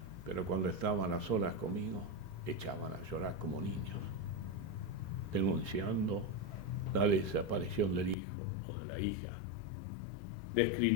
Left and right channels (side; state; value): right; drops out; at 8.2 s